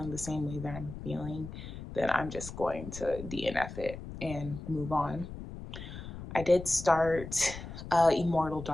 the same way that I'm feeling, then I'm just going to DNF it and move on. I did start Immortal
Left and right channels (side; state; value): left; noise; rumble, 10 dB below the sound